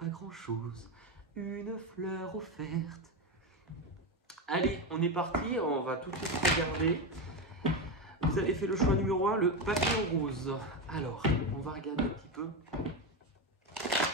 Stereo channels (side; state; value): both; normal; correlation 0.14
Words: grand chose, une fleur offerte. Allez, on est parti, on va tout de suite regarder. Vous avez fait le choix numéro 1, le papillon rose. Alors, on va regarder un petit peu.